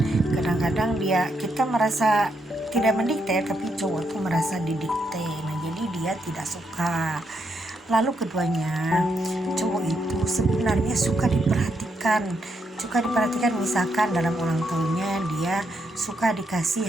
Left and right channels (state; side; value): normal; both; correlation 0.79